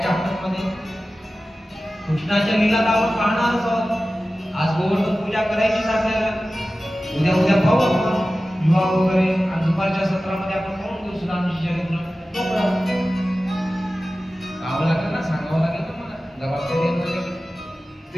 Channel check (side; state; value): both; normal; correlation 0.95